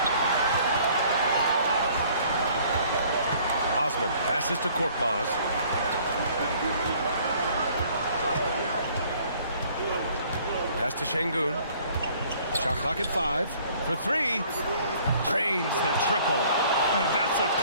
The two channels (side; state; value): both; inverted; correlation -0.57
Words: Osman passes to Korkmaz. Pass to Şengün. Shot clock at 5. For 3. Drains the triple. And that's a